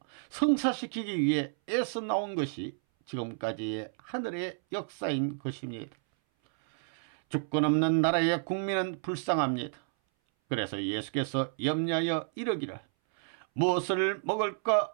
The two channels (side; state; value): left; silent; 57 dB below the other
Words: 성사시키기 위해 애써 나온 것이 지금까지의 하늘의 역사인 것입니다. 주권 없는 나라의 국민은 불쌍합니다. 그래서 예수께서 염려하여 이르기를 무엇을